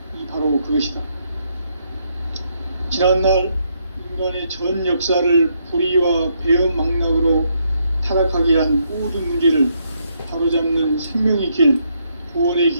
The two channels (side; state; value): both; inverted; correlation -0.75